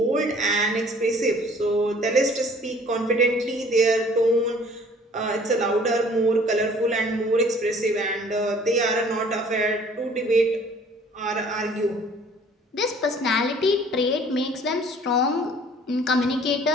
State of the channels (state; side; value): normal; both; correlation 0.53